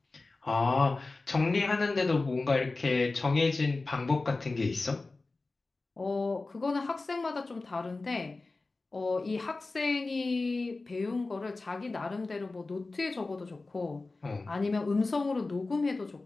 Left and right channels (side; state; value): right; quieter; 3.5 dB